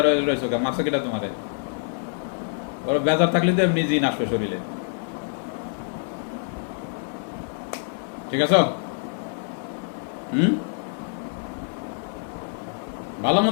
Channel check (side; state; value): right; silent; 61 dB below the other